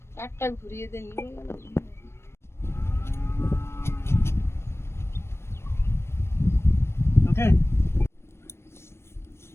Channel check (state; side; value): late; right; 0.12 ms